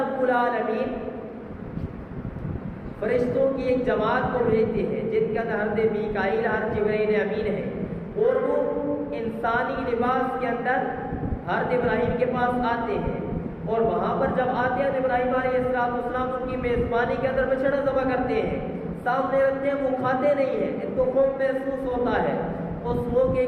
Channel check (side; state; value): both; identical; correlation 1.00